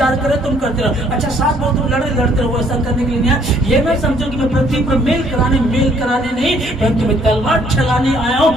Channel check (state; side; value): normal; both; correlation 0.63